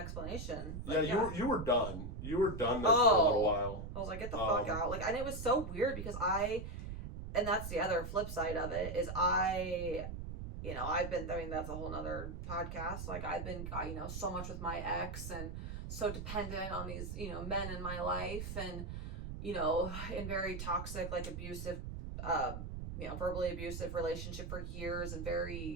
Like, you were done. You were done there for a little while. I was like, get the fuck out. Like, and it was so weird because and that's the other flip side of it, is that's a whole nother podcast. Like, I've been, so much with my ex and so dependent on these, men in my life, and, in very toxic, like abusive, verbally abusive relationship for years, and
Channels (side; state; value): right; noise; rumble, 7 dB below the sound